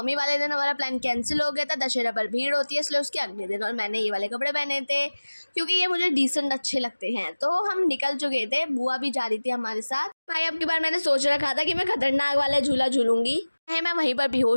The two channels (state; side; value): inverted; both; correlation -1.00